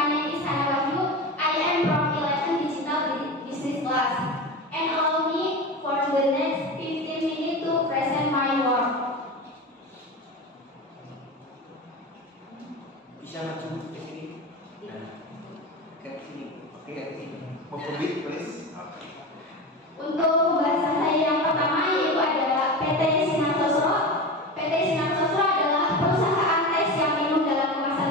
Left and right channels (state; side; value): normal; both; correlation 0.26